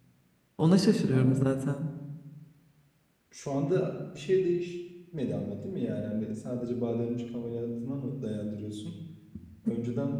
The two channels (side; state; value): both; identical; correlation 1.00